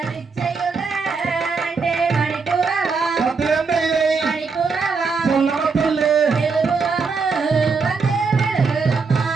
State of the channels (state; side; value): quieter; left; 4.8 dB